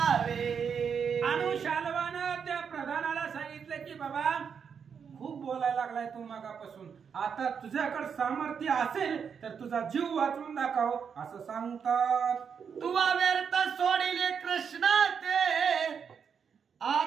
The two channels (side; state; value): left; quieter; 6.8 dB